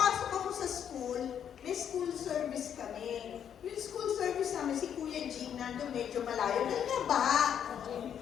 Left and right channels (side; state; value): right; quieter; 8.8 dB